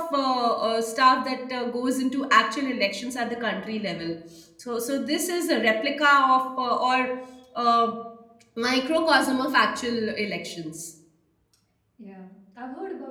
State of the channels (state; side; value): identical; both; correlation 1.00